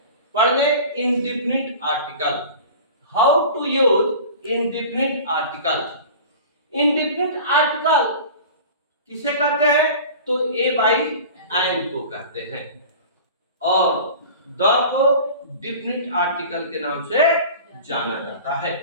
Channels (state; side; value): inverted; both; correlation -0.39